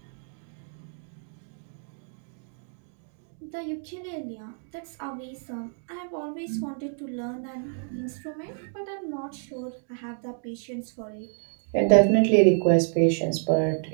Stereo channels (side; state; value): left; silent; 58 dB below the other